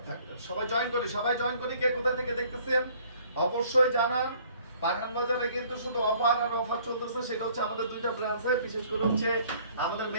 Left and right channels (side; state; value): both; inverted; correlation -0.58